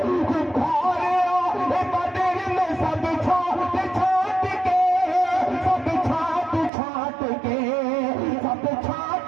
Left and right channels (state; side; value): drops out; left; at 6.7 s